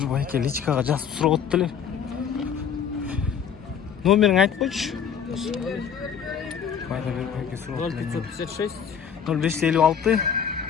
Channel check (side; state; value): right; quieter; 7.7 dB